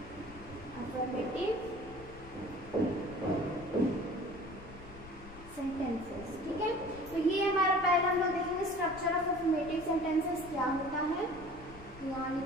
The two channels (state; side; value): noise; left; rumble, 17 dB below the sound